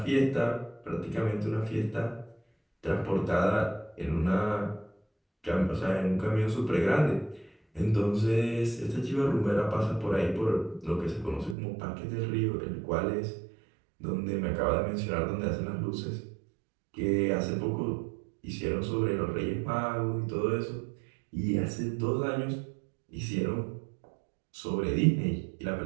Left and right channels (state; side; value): drops out; left; at 11.6 s